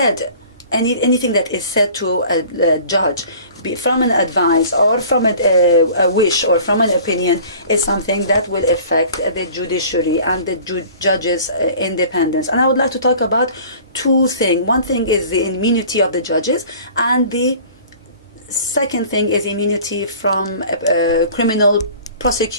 anything that is said to a judge, from an advice or from a wish or from an opinion, is something that will affect the judiciary and the judges' independence. And I would like to talk about two things. One thing is the immunity of the judges, and the second thing is immunity from criminal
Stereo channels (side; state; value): both; inverted; correlation -0.46